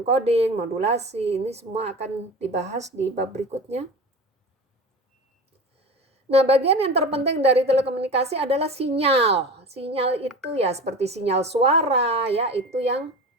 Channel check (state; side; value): normal; both; correlation 0.32